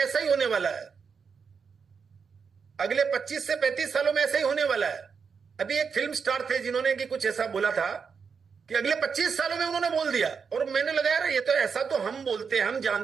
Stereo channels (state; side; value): quieter; left; 6.0 dB